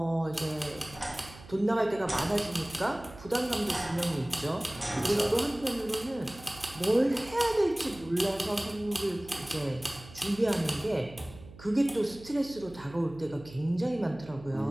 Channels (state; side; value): noise; right; hum, 18 dB below the sound